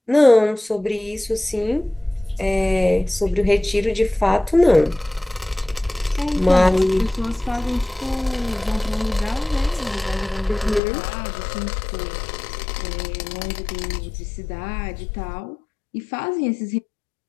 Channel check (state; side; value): drops out; right; at 10.8 s